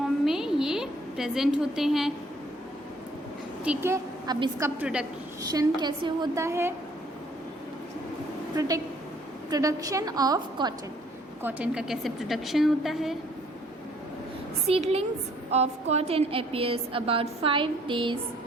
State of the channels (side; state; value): both; normal; correlation 0.61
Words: में ये प्रेजेंट होते हैं, ठीक है. अब इसका प्रोडक्शन कैसे होता है? Production of cotton. कॉटन का कैसे प्रोडक्शन होता है? Seedlings of cotton appears about 5 days